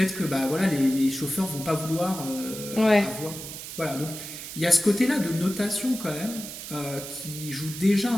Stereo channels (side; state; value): right; noise; hiss, 10 dB below the sound